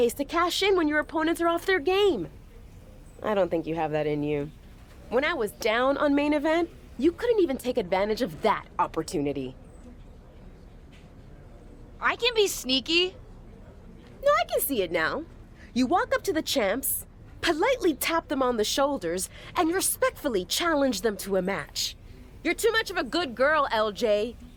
to cash in when your opponents are off their game. I don't think you have that in you. When I was down on main event, you couldn't even take advantage of that opportunity. I can be sneaky. No, I can see it now. You walk up to the champs, politely tap them on the shoulders, and respectfully challenge them to a match. You're too much of a good girl, LJ.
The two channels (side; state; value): both; identical; correlation 1.00